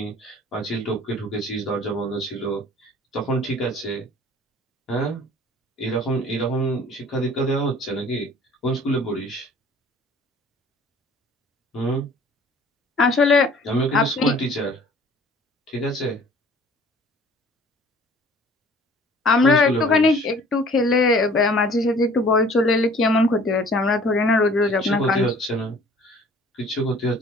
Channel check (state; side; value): normal; both; correlation 0.51